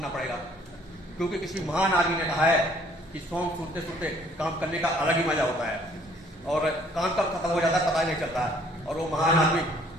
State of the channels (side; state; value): both; normal; correlation 0.60